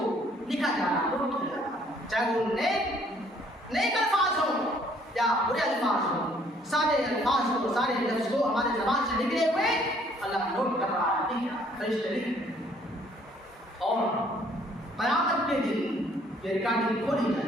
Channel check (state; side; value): normal; both; correlation 0.62